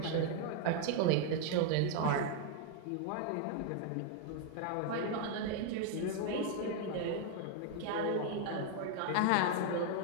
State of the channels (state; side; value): different; both; correlation 0.00